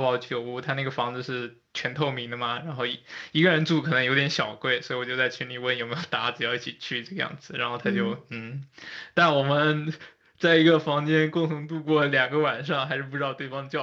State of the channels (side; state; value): both; identical; correlation 1.00